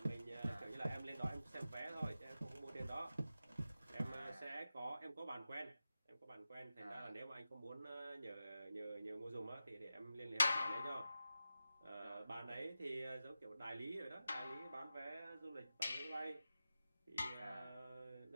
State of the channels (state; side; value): inverted; both; correlation -0.92